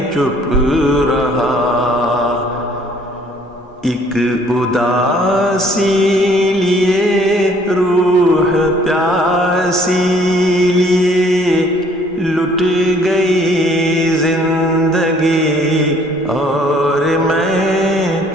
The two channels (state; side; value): normal; both; correlation 0.59